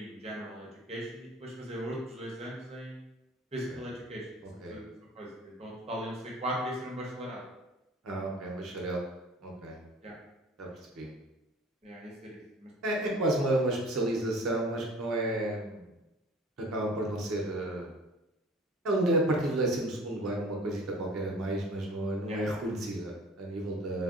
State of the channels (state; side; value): normal; both; correlation 0.46